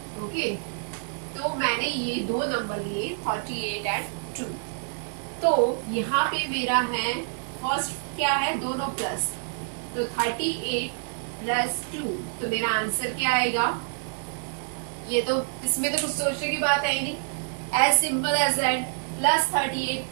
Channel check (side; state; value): left; silent; digital silence